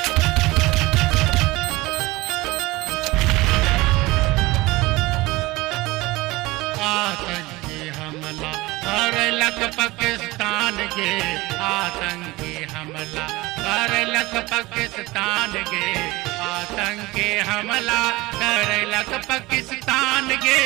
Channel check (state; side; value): quieter; left; 20.9 dB